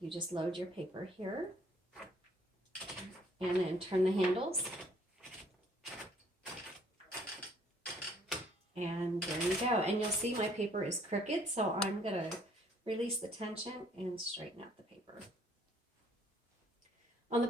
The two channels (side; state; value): both; normal; correlation 0.62